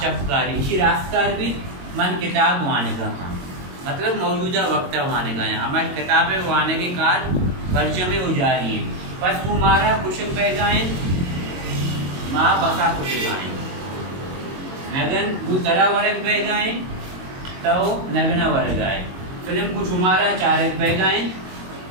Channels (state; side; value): late; left; 22 ms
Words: इसी रास्कार भी मन किताब वाने का हाँ मतलब मौजूदा वक्त वाने का है हमारी किताबें वाने के कार वर्ज में उजारी है बस कुमारा कुशक बैगाएं माँ बसा कुशगाएं नगन वो तरा वर्ग बैगाएं तो नगना वर्ग आए फिल्म को शुमारा चारक बैगाएं